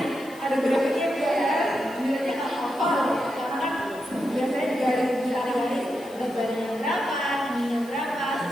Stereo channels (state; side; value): noise; left; hiss, 22 dB below the sound